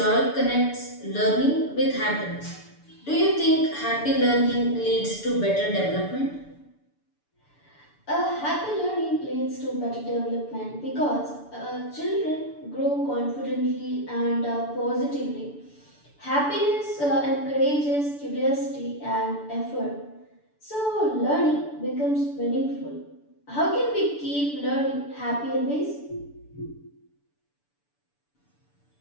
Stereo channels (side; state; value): right; late; 6.9 ms